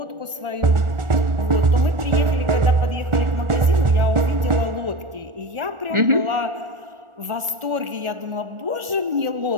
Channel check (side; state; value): left; late; 1.4 ms